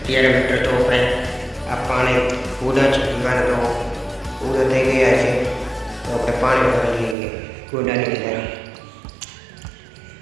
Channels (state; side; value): drops out; left; at 7.2 s